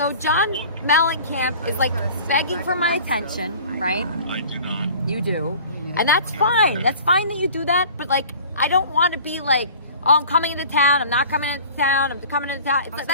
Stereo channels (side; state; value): both; inverted; correlation -0.44